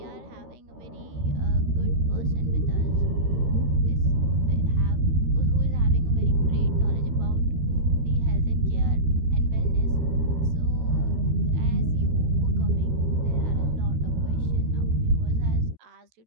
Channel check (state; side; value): late; left; 13 ms